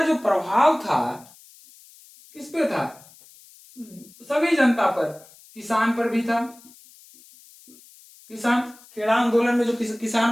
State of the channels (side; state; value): left; noise; hiss, 24 dB below the sound